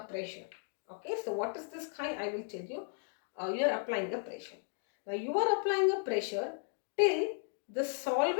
Okay, so what is this kind? I will tell you. You are applying a pressure. Now you are applying a pressure till the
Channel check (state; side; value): silent; right; 54 dB below the other